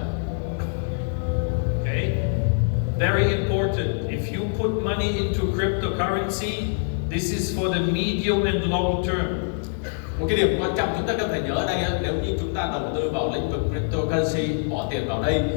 Okay? Very important. If you put money into cryptocurrency, this is for the medium and long term. Một cái điểm quan trọng chúng ta cần phải nhớ ở đây, nếu như chúng ta đầu tư vào lĩnh vực cryptocurrency, bỏ tiền vào đây,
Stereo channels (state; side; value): silent; right; 59 dB below the other